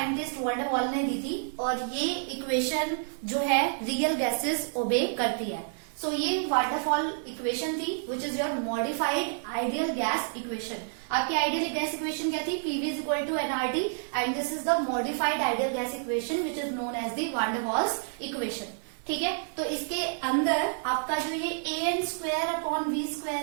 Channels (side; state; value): left; silent; 58 dB below the other